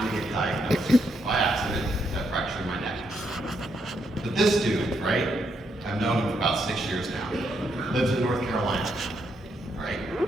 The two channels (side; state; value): both; normal; correlation 0.78